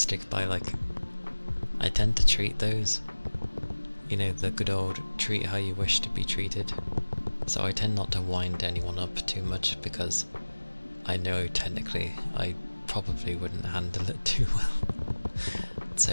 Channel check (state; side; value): inverted; both; correlation -1.00